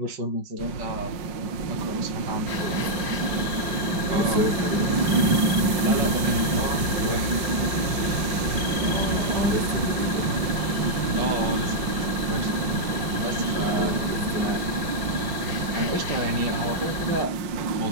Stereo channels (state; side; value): late; left; 5.5 ms